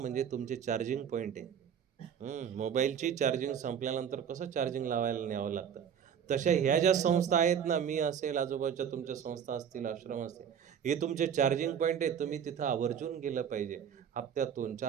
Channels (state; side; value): quieter; left; 8.2 dB